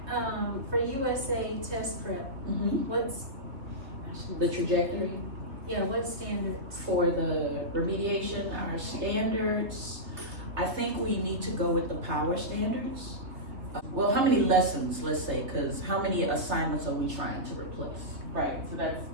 for USA test prep, what's, The trajectory what standards? for the remediation, our standards, I think we need to go with the power standards. Well, how many lessons, let's say, because how many assignments are we trying to replace? Right, so that's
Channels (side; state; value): left; late; 3.2 ms